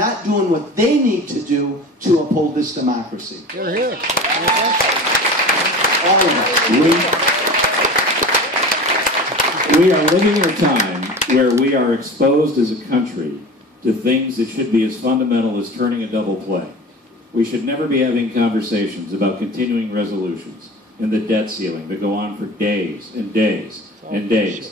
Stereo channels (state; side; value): normal; both; correlation 0.35